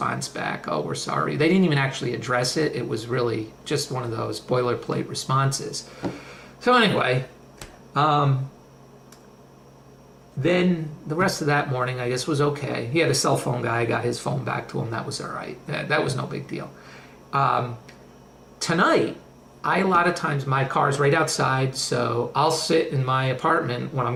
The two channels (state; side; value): identical; both; correlation 1.00